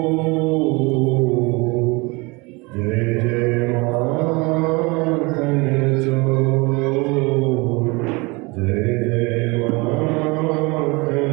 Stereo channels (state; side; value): quieter; left; 26.3 dB